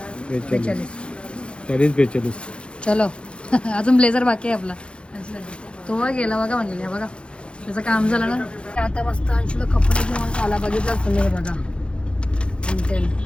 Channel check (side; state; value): right; late; 0.056 ms